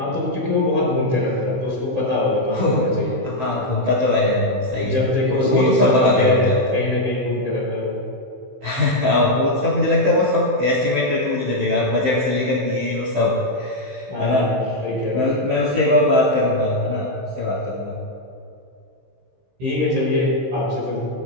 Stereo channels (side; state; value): left; late; 16 ms